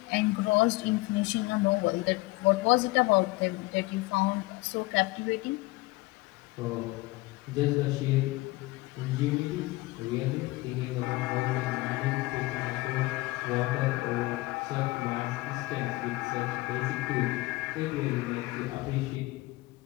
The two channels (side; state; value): right; quieter; 21.0 dB